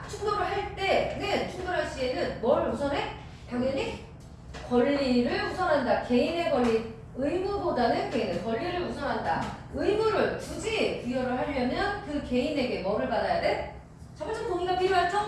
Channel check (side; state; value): both; identical; correlation 1.00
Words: 충돌을 할 때는 충돌할 시에는 뭘 우선해? 당연히 권리를 우선한다. 개인의 권리, 의무보다는 개인의 권리를 우선한다. 의무를 굳이 부여를 하려면 그 개인에게 뭐를 받아야 돼? 자발적 동의가 필요할